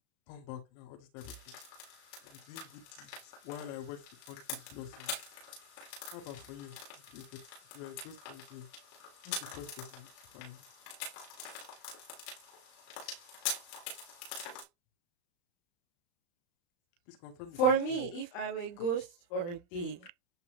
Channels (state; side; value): late; right; 35 ms